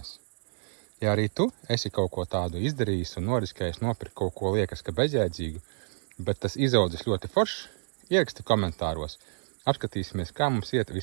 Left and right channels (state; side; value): silent; left; 59 dB below the other